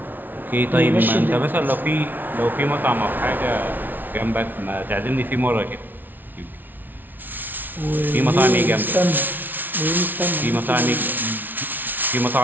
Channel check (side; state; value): left; late; 0.087 ms